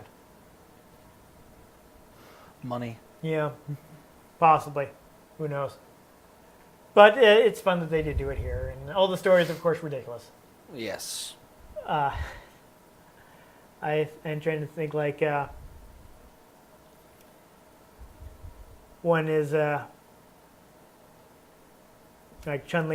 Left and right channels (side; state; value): both; identical; correlation 1.00